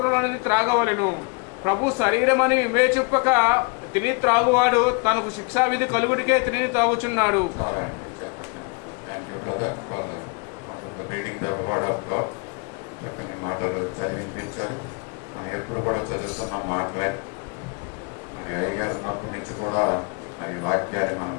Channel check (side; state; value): right; quieter; 32.5 dB